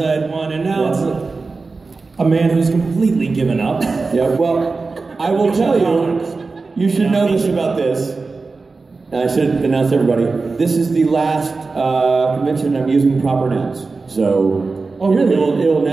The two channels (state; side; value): quieter; left; 4.0 dB